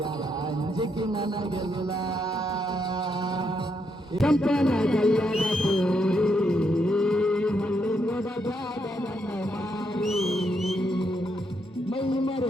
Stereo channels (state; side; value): normal; both; correlation 0.78